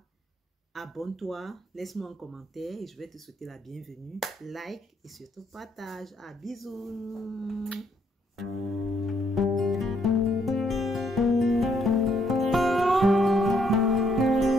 Abonne-toi, laisse-moi un commentaire et je vais te souhaiter la bienvenue. Like et surtout partage. Ah, bisous.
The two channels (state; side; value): normal; both; correlation 0.71